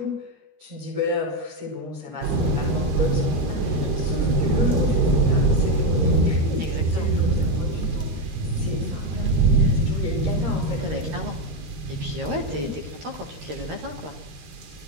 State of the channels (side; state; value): left; late; 13 ms